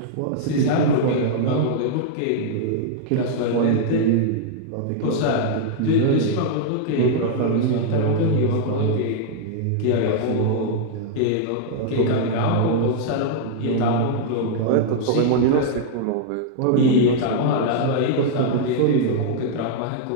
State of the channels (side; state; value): both; different; correlation -0.01